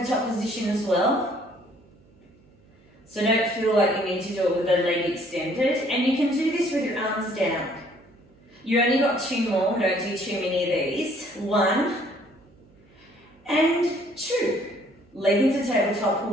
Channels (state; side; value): noise; right; hum, 30 dB below the sound